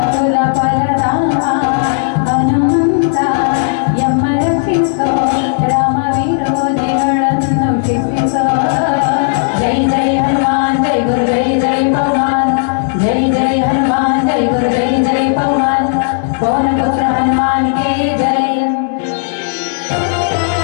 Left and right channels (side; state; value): right; silent; digital silence